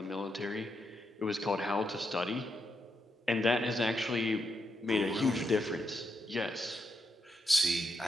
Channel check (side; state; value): both; normal; correlation 0.83